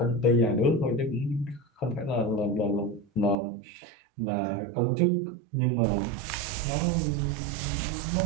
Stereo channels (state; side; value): drops out; left; at 3.4 s